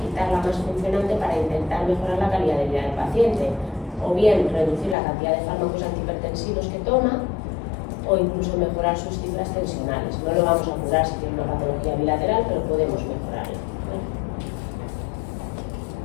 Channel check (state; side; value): drops out; right; at 5.0 s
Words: quitar la más funcionante para intentar mejorar la calidad de vida del paciente. O bien reducir la cantidad de fármacos antihipertensivos que toma, o incluso mejorar sus cifras tensionales. No lo vamos a curar si tiene una patología bilateral, pero podemos mejorarla.